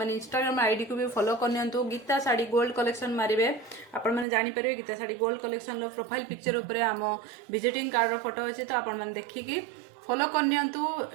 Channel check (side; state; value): left; drops out; at 4.2 s